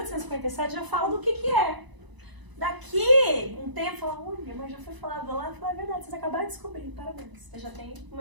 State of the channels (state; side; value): late; left; 1.0 ms